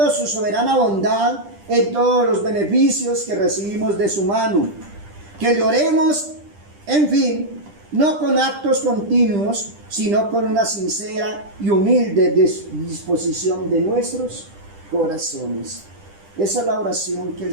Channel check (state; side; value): late; left; 10 ms